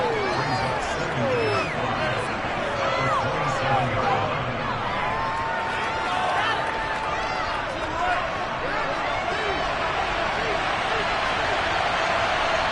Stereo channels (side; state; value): both; identical; correlation 1.00